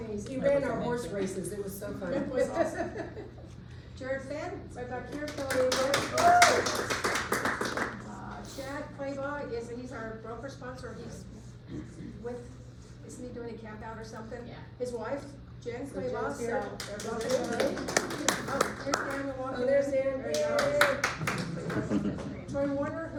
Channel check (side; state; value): both; identical; correlation 1.00